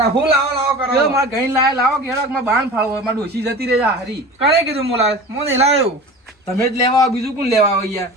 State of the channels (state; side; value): normal; both; correlation 0.36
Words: હું લાવો કરો મારા ગઈ લાવે લાવો કે હેડો મારા બાણ ફાળવો મારા ડોસી જતી રહે હારી. કરે કીધું હું લાવે હું નહીં લાવ્યો. તમે જ લેવા આવો, બીજું કોણ લેવા આવે યાર?